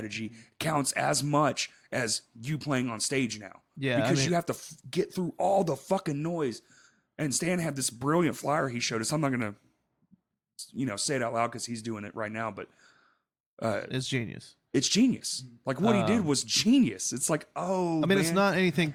counts as much as you playing on stage now. Yeah, because you have to get through all the fucking noise. And Stan had this brilliant flyer he showed us. I'm not gonna, say it out loud because he's doing it right now. But it's genius. It's genius. Like what he did was genius. It's like, it's not anything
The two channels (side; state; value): both; identical; correlation 1.00